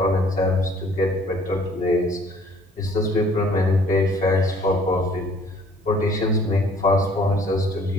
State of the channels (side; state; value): both; normal; correlation 0.57